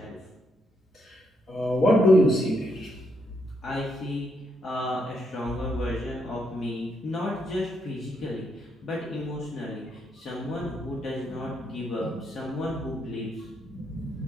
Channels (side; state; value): both; normal; correlation 0.77